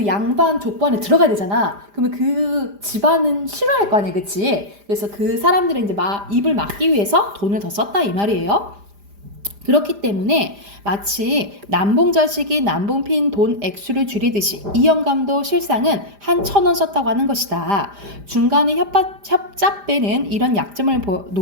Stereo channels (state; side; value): late; left; 5.0 ms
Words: 양반 족보 안에 들어가야 되잖아. 그러면 그 집안은 싫어할 거 아니야, 그치? 그래서 그 사람들은 이제 입을 막기 위해서 돈을 더 썼다 이 말이에요. 그렇기 때문에 마치 남봉자식이 남봉핀 돈 액수를 줄이듯이 이 영감도 실상은 한 1,000원 썼다고 하는 것이다. 중간에 협잡배는 이런 약점을